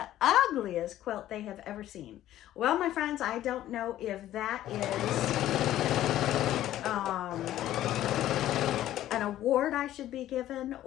ugliest quilt they have ever seen. Well, my friends, I don't know if that is an award I should be given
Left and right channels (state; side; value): quieter; right; 13.2 dB